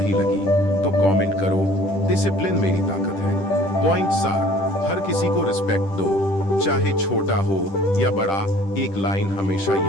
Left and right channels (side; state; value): right; late; 10 ms